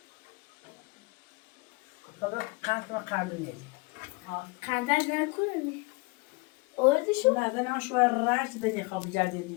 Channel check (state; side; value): quieter; right; 27.1 dB